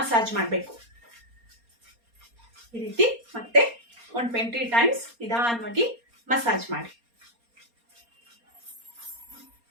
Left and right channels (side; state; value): left; late; 4.3 ms